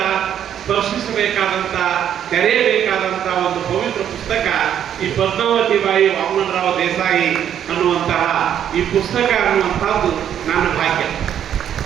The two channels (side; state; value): left; quieter; 9.7 dB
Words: ಸ್ಪರ್ಶಿಸಬೇಕಾದಂತ, ತೆರೆಯಬೇಕಾದಂತ ಒಂದು ಪವಿತ್ರ ಪುಸ್ತಕ ಈ ಪದ್ಮಾವತಿ ಬಾಯಿ ವಾಮನರಾವ್ ದೇಸಾಯಿ ಅನ್ನುವಂತಹ ಈ ಪುಸ್ತಕ ಅನ್ನುವಂಥದ್ದು ನನ್ನ ಭಾಗ್ಯ.